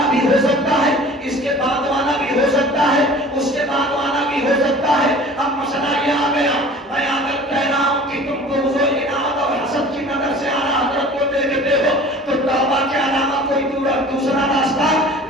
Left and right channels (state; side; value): normal; both; correlation 0.44